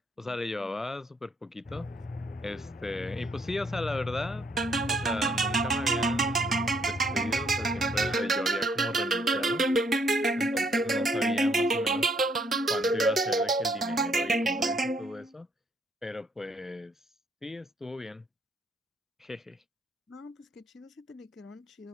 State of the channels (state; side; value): normal; both; correlation 0.69